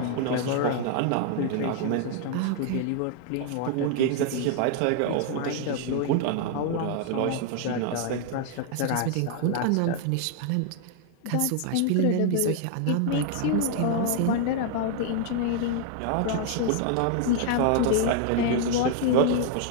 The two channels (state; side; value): different; both; correlation 0.00